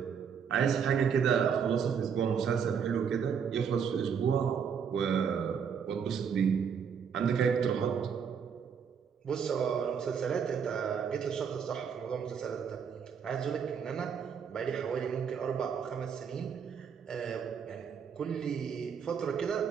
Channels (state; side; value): quieter; left; 7.0 dB